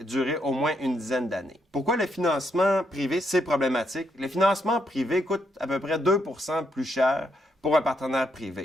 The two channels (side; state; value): both; normal; correlation 0.77